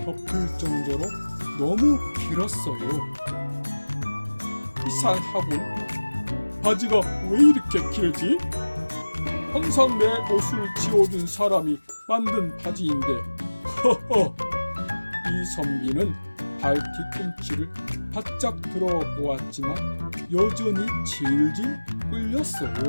덮을 정도로 너무 길었어요. 이상하군. 바지가 왜 이렇게 길지? 항상 내 옷을 지워준 사람이 만든 바지인데. 허허. 이선비는 발 뒤꿈치를 바짝 들어 보았지만 여전히 질질 끌렸어요.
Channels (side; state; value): both; inverted; correlation -1.00